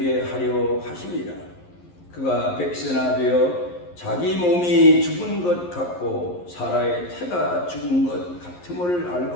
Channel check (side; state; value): right; late; 11 ms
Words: 하려 하심이라. 그가 백세나 되어 자기 몸이 죽은 것 같고 사라의 태가 죽은 것 같음을